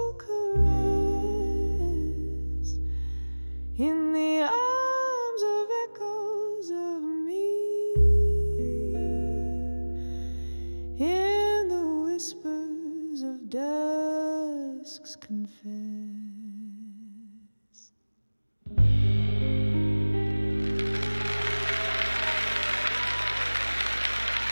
caress. In the arms of echoes of me, in the whispers of dusk's confess.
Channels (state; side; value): inverted; both; correlation -1.00